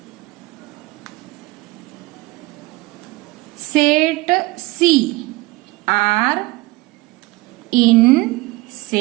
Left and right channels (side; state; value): left; quieter; 21.2 dB